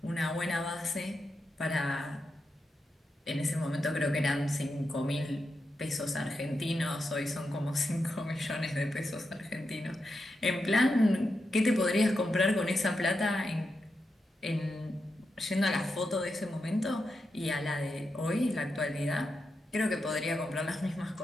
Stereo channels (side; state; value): both; normal; correlation 0.87